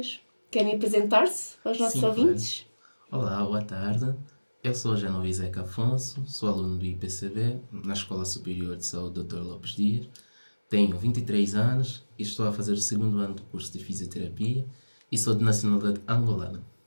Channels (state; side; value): inverted; both; correlation -1.00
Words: Querem apresentar-se aos nossos ouvintes? Claro. Olá, boa tarde. Eu sou Genovi Zeca Afonso, sou aluno do IPCB, na Escola Superior de Saúde Dr. Lopes Dias. Tenho 23 anos e estou a fazer o segundo ano do curso de Fisioterapia e sou de nacionalidade angolana.